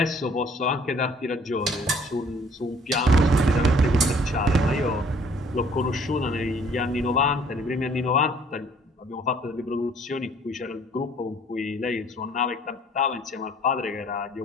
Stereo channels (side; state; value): both; normal; correlation 0.58